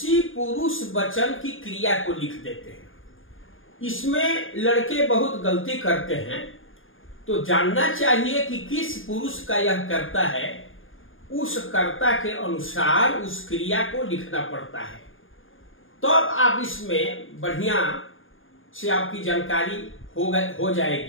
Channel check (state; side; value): late; right; 0.59 ms